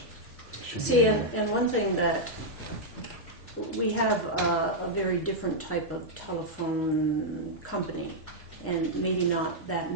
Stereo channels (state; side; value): normal; both; correlation -0.05